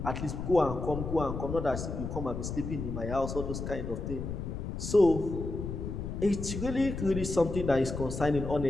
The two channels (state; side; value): noise; left; rumble, 5 dB below the sound